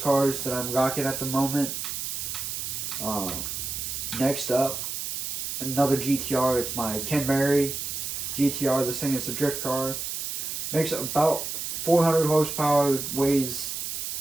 that I'm rocking at the moment. Next up, another GTR. It's my Ken Mary GTR. This thing is a drift car. Makes about 400 horsepower, weighs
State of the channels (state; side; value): noise; right; hiss, 4 dB below the sound